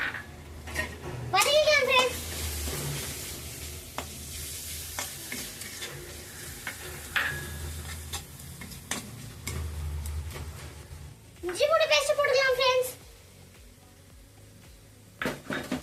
வதக்கிக்கலாம் ஃப்ரெண்ட்ஸ். இஞ்சி பூண்டு பேஸ்ட் போட்டுக்கலாம் ஃப்ரெண்ட்ஸ்.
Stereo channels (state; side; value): identical; both; correlation 1.00